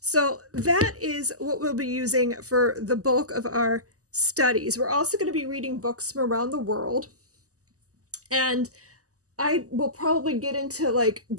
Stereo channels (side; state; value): left; late; 0.66 ms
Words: that is what we'll be using for the bulk of our studies. We're also going to be reading books from around the world, and I will probably get into like